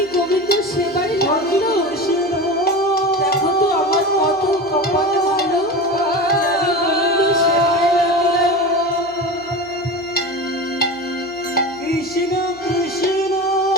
গোবিন্দ সেবায় লাগলো? দেখো তো আমার কত কপাল ভালো, আমি গোবিন্দ সেবায় লাগলাম। কৃষ্ণ কৃষ্ণ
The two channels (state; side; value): noise; right; hum, 27 dB below the sound